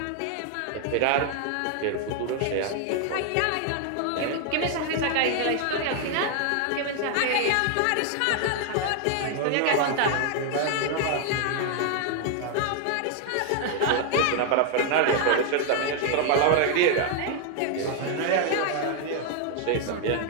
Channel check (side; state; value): both; different; correlation 0.00